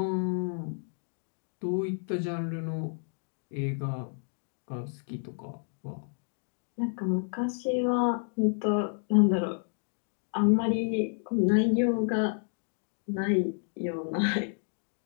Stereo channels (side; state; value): right; silent; 57 dB below the other